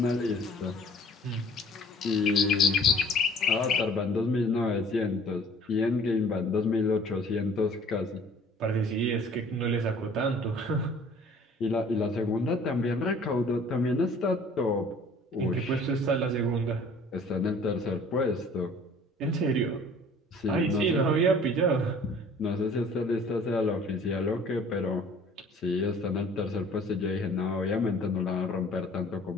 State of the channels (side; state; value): both; normal; correlation 0.51